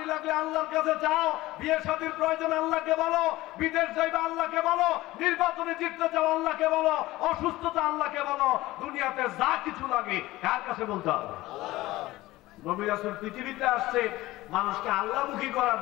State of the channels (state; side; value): quieter; right; 18.0 dB